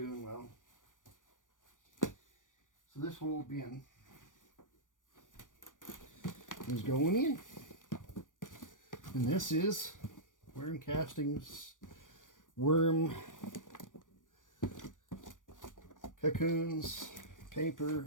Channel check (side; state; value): right; late; 0.88 ms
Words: well. So this whole bin is going in. And this is Worm Castings worm cocoons,